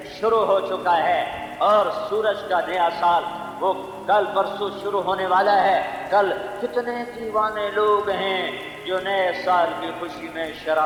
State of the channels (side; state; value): both; identical; correlation 1.00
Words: شروع ہو چکا ہے، اور سورج کا نیا سال وہ کل پرسوں شروع ہونے والا ہے۔ کل کتنے دیوانے لوگ ہیں جو نئے سال کی خوشی میں